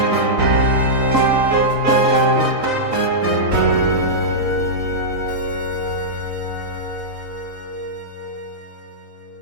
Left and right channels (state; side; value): late; left; 3.9 ms